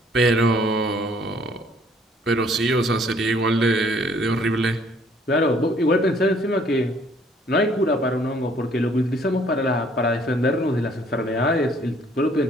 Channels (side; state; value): both; normal; correlation 0.61